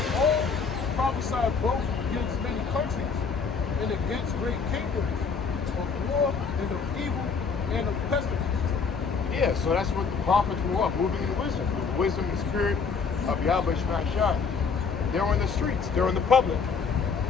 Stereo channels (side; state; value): right; quieter; 5.4 dB